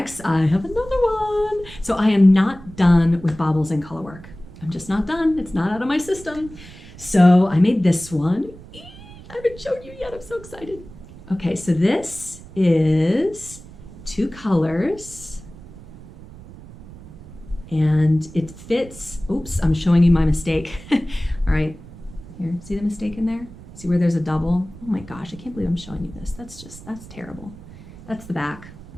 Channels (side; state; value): right; noise; rumble, 17 dB below the sound